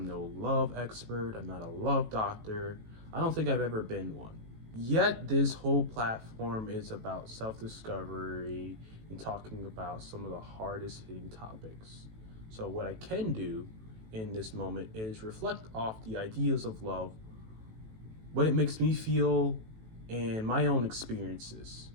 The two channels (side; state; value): left; late; 18 ms